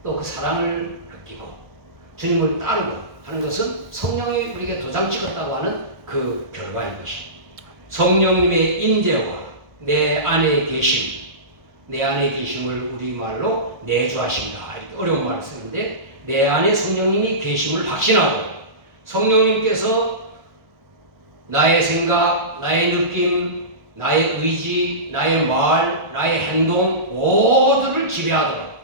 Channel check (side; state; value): left; late; 1.4 ms